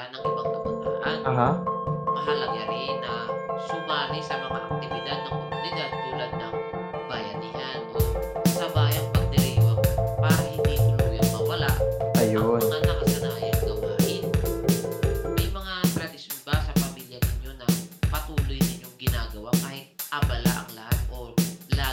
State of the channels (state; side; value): identical; both; correlation 1.00